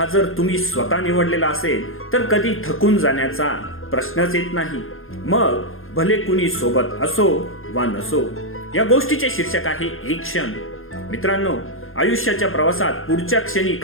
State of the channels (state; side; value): late; right; 0.60 ms